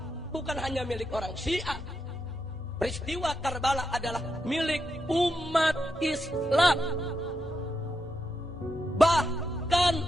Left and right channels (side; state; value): both; normal; correlation 0.84